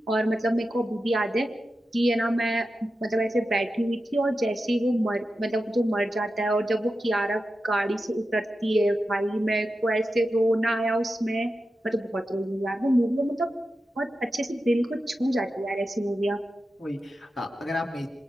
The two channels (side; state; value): both; normal; correlation 0.91